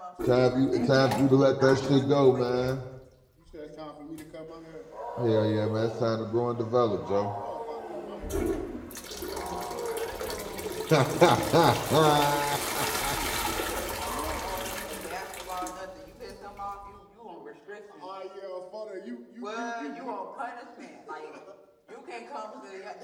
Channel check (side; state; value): both; identical; correlation 1.00